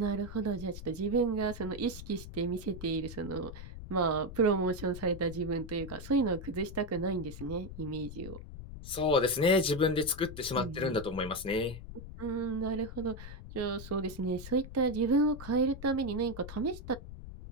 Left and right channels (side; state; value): left; noise; rumble, 11 dB below the sound